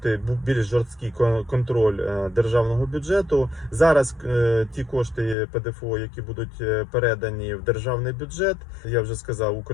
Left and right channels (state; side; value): drops out; right; at 5.4 s